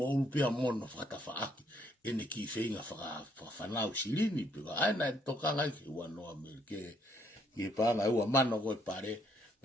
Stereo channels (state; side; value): normal; both; correlation 0.69